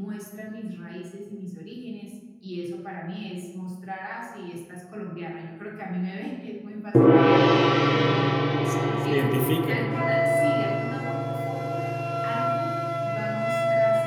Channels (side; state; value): both; identical; correlation 1.00